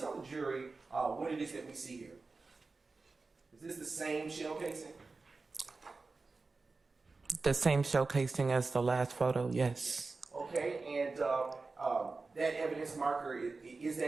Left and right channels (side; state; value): left; quieter; 3.9 dB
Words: the jury what it is that we see here? Is this the same shell casing? The same shell casing as the last photo, yes. Okay, and that evidence marker, is